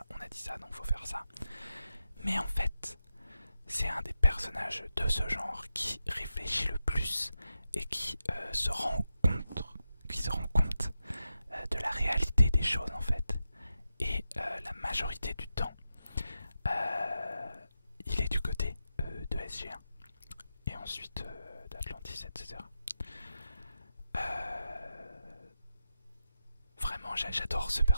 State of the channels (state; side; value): inverted; both; correlation -0.89